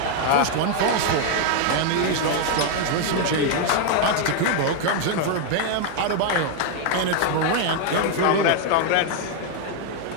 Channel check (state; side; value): different; both; correlation 0.01